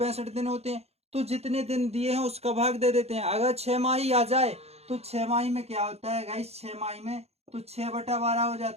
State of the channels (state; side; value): late; left; 0.30 ms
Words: दिन होते हैं। तो जितने दिन दिए हैं उसका भाग दे देते हैं। अगर 6 माही आ जाए तो 6 माही में क्या होता है गाइस? 6 माही में तो 6/12 हो